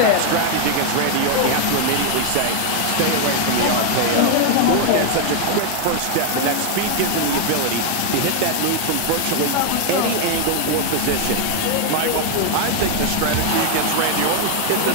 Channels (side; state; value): both; different; correlation 0.00